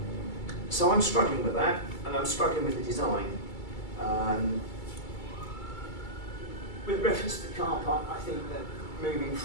So I'm struggling with that, and I'm struggling with the design. With reference to the car park, I think that moving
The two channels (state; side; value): late; right; 2.3 ms